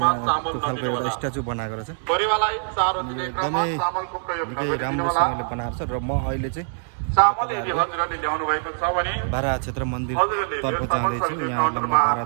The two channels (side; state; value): left; silent; 63 dB below the other